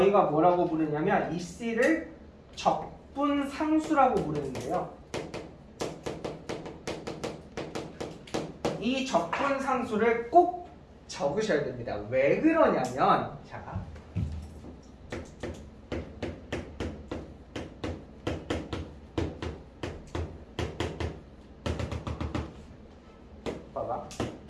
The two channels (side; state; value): both; identical; correlation 1.00